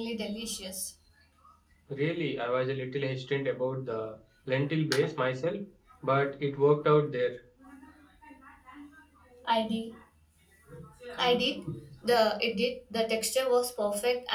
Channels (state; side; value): identical; both; correlation 1.00